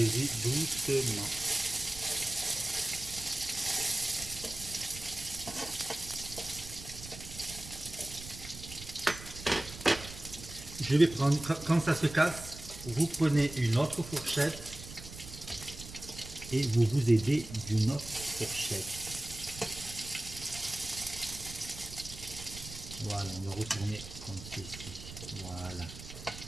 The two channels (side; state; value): right; noise; rumble, 13 dB below the sound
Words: doucement. Je vais prendre, quand ça se casse, vous prenez une autre fourchette et vous vous aidez d'une autre fourchette. Voilà, on va retourner comme ceci. Voilà.